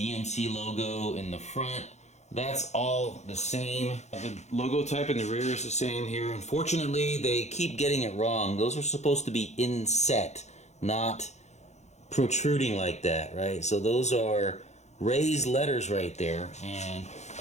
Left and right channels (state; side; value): late; right; 0.33 ms